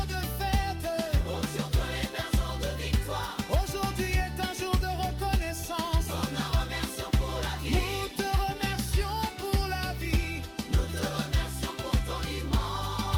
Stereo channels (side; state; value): both; identical; correlation 1.00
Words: de fête. Oh, sur toi les berceaux de victoire. Aujourd'hui est un jour de reconnaissance. On te remercie pour la vie. Nous te remercions pour la vie. Nous te remercions pour ton